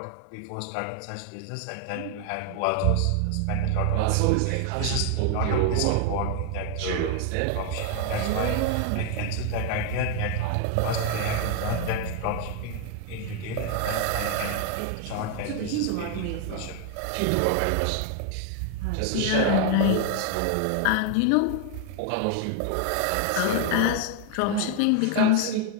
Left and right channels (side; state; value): both; different; correlation 0.00